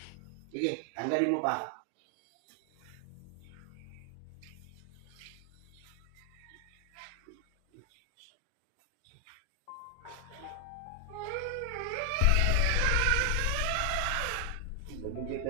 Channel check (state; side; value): different; both; correlation 0.00